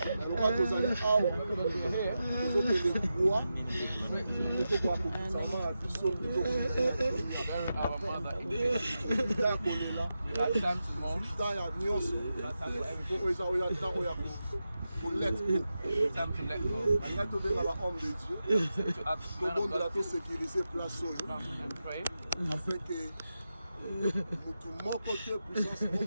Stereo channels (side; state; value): both; inverted; correlation -0.90